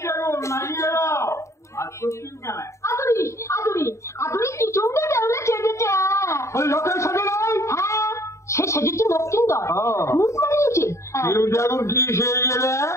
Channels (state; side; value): late; right; 0.14 ms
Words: সে সেজেছে দক্ষিণদর মুখ বানিয়েছে। কি সেই গেলে